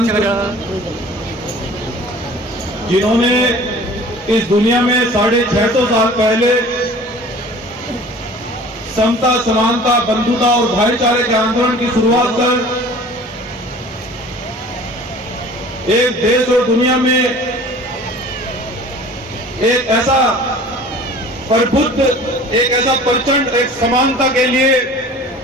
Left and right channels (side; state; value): both; normal; correlation 0.45